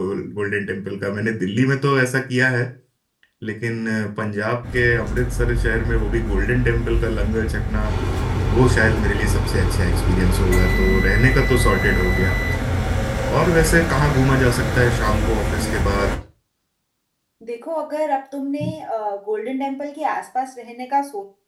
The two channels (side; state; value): both; identical; correlation 1.00